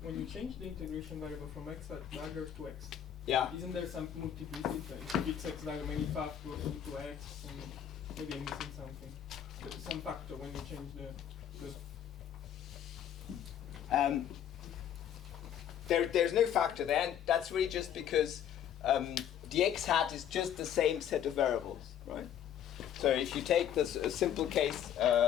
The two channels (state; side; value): quieter; right; 9.7 dB